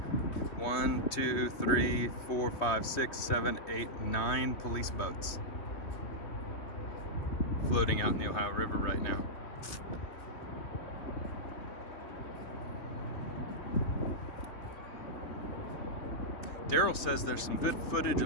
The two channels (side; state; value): right; late; 3.2 ms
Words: 1, 2, 3, 4, 5, 6, 7, 8, 9 police boats. floating out in the Ohio River right now. Daryl says there's some good footage